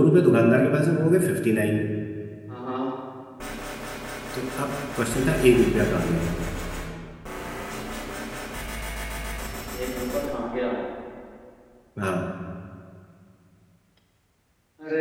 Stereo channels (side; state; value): both; identical; correlation 1.00